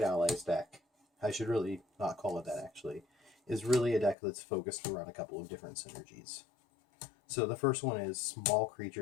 allies deck, I should really not call it that actually, is really a deck that's focused around a couple of different synergies. So the first one is small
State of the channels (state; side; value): drops out; right; at 4.2 s